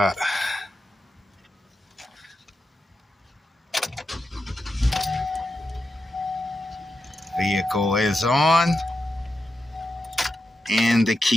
Vehicle is on, and the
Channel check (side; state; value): both; normal; correlation 0.88